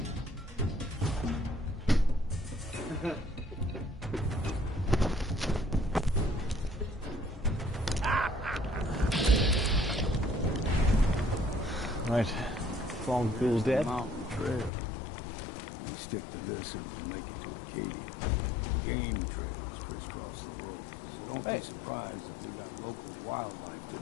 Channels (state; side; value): drops out; right; at 14.7 s